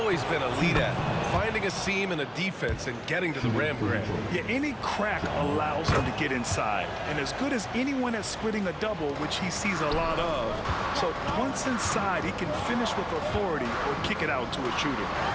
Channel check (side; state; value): both; identical; correlation 1.00